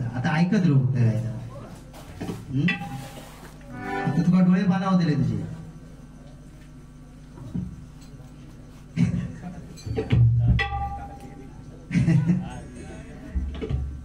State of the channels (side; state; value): both; identical; correlation 1.00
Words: आता ऐकत राहू काय आता तुका डोळे पाना दिले तुझे